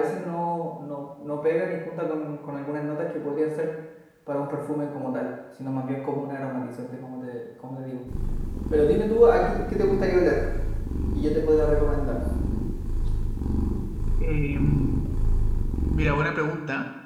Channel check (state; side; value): identical; both; correlation 1.00